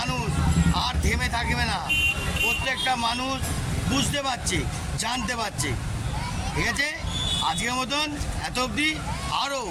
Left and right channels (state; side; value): identical; both; correlation 1.00